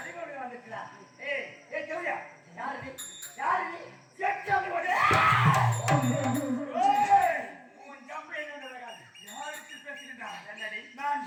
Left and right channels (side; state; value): both; identical; correlation 1.00